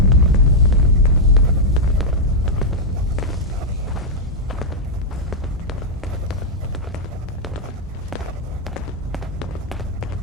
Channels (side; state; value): both; normal; correlation -0.04